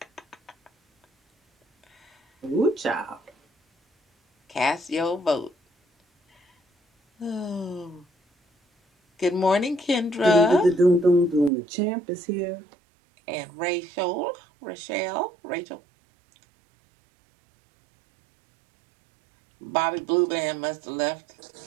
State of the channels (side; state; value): left; drops out; at 11.5 s